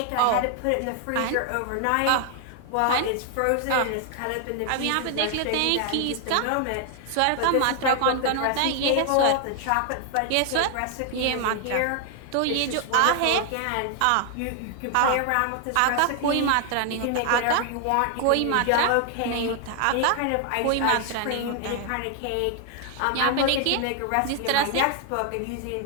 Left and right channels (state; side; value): different; both; correlation 0.00